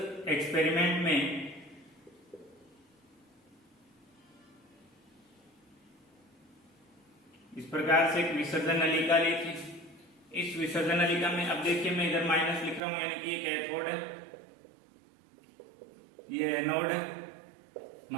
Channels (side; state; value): left; drops out; at 12.8 s